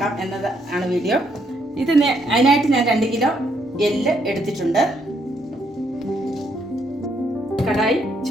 എന്നത് ആണ് വീഡിയോ. അതിനായിട്ട് ഞാൻ 2 കിലോ എല്ല് എടുത്തിട്ടുണ്ട്. കടായി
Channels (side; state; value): both; normal; correlation 0.73